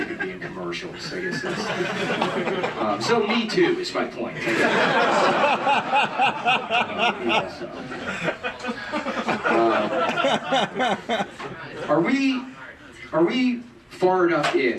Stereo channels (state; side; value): identical; both; correlation 1.00